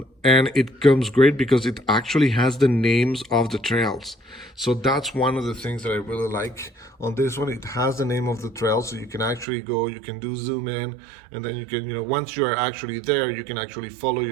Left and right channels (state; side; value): drops out; left; at 9.5 s